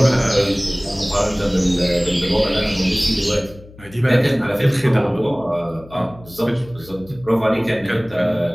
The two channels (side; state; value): left; noise; hum, 21 dB below the sound